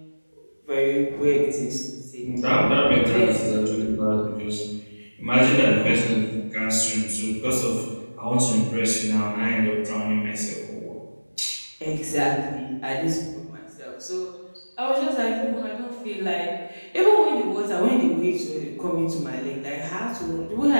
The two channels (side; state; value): both; inverted; correlation -1.00